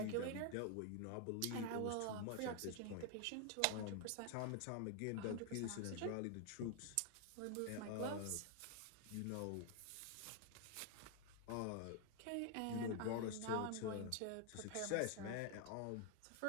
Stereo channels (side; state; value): both; different; correlation 0.00